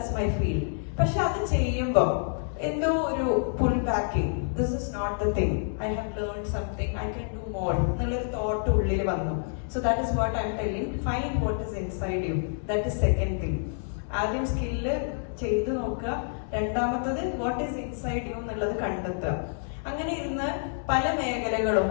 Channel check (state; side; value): silent; right; digital silence